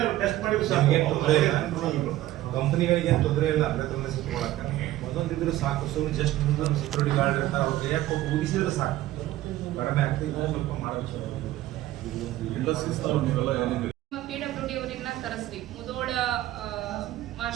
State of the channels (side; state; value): left; quieter; 15.1 dB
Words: ಕಂಪನಿಗಳಿಗೆ ಏನು ತೊಂದರೆ ಇಲ್ಲ, ಅದ್ರ ಸಿಕ್ಕೊಳಕ್ಕೆ ಒಂದೊಂದಿದ್ರು ಸಾಕು. ಸುಮ್ಮನೆ ಜಸ್ಟ್ ಮುಂದೊಂದು ಸೆಕ್ಯೂರಿಟಿ ಗಾರ್ಡ್ ಇರ್ತಾರೆ, ಅವ್ರಿಗೆ ಯಾಕೆ ಹೋಗಿ ಊದಿಸಿದ್ರೆ ಸಾಕು, ಕಡಿಮೆ ಆಗ್ತದೆ. ಸ್ವಲ್ಪ ಮಾಡಬೇಕು. PWD ಅವ್ರನ್ನ ಕರೆಸ್ರಿ, ಮುದೋಳ